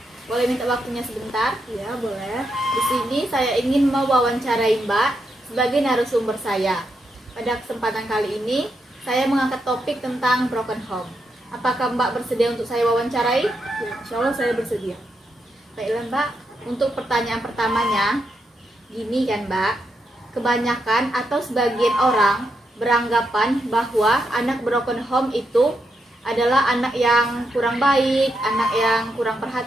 Boleh minta waktunya sebentar? Iya, boleh. Di sini saya ingin mewawancarai Mbak sebagai narasumber saya. Pada kesempatan kali ini saya mengangkat topik tentang broken home. Apakah Mbak bersedia untuk saya wawancarai? Ya, insya Allah saya bersedia. Baiklah Mbak, untuk pertanyaan pertamanya, gini kan Mbak, kebanyakan atau sebagian orang beranggapan bahwa anak broken home itu adalah anak yang kurang baik, anak yang kurang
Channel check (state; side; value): normal; both; correlation 0.83